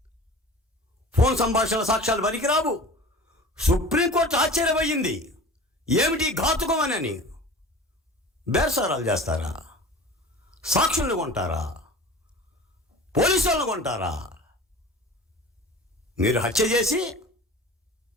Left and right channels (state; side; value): normal; both; correlation 0.39